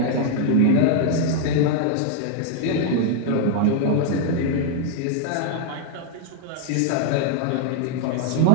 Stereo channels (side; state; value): both; different; correlation 0.01